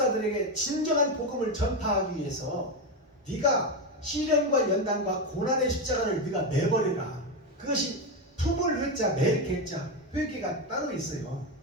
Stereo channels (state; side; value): normal; both; correlation 0.12